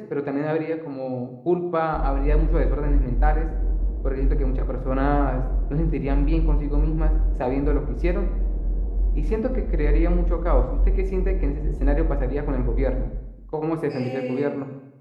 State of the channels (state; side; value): identical; both; correlation 1.00